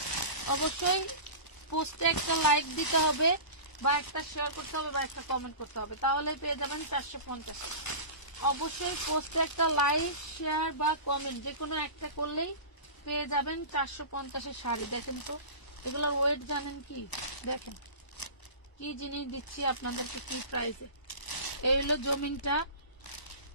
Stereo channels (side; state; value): right; late; 1.0 ms